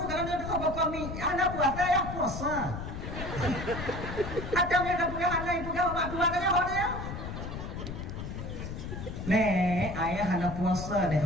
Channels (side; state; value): left; noise; rumble, 7 dB below the sound